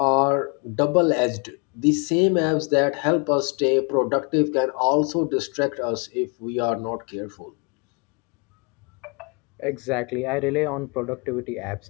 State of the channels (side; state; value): right; quieter; 33.7 dB